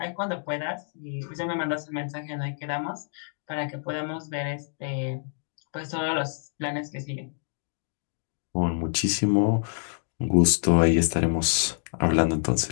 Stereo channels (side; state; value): right; silent; digital silence